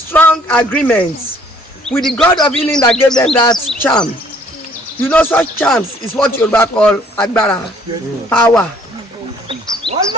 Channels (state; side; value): normal; both; correlation 0.60